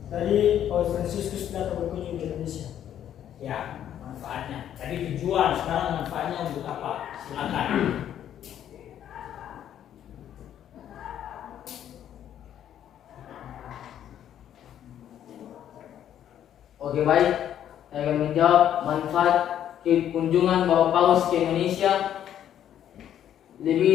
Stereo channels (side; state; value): right; quieter; 10.4 dB